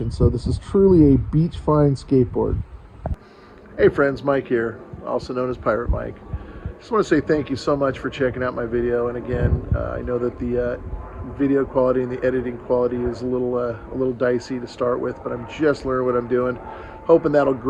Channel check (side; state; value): both; identical; correlation 1.00